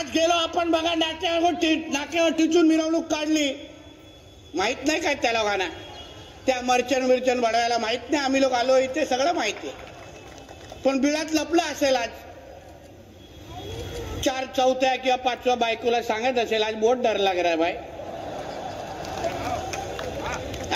गेलो आपण बघा, नाक्यावर टिचून मिरवणूक काढली. माहित नाही काय त्या लोकांना, त्या मर्चन बडवायला माहित नाही आम्ही लोक आलो इथे, सगळं माहिती आहे. पण बिळात लपलं असेल. आज 4 चौथ्या किंवा 5व्या बायकोला सांगत असेल आज बहुत डर लग रहा है भाई,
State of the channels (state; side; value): identical; both; correlation 1.00